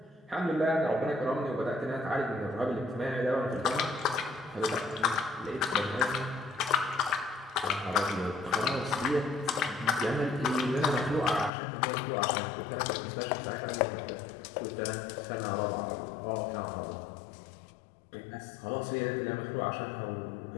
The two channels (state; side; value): drops out; right; at 11.5 s